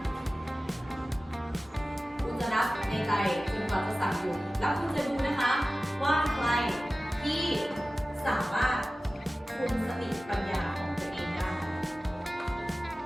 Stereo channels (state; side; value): normal; both; correlation 0.96